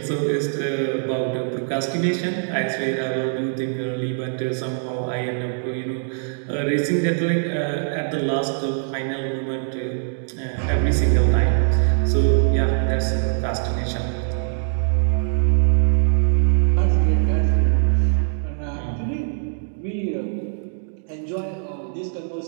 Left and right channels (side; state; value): left; silent; digital silence